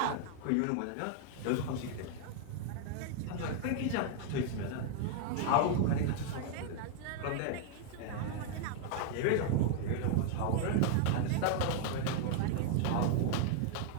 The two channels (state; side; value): different; both; correlation 0.00